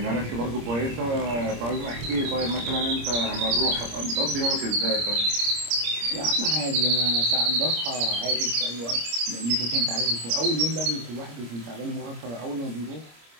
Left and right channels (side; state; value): left; late; 26 ms